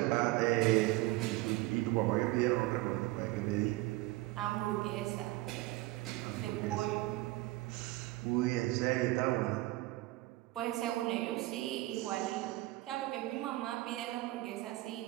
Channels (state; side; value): quieter; left; 19.2 dB